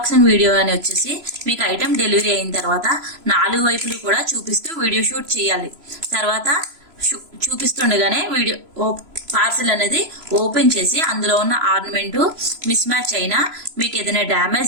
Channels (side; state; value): left; late; 3.0 ms